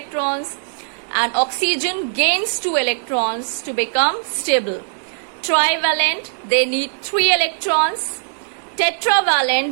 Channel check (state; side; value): silent; left; digital silence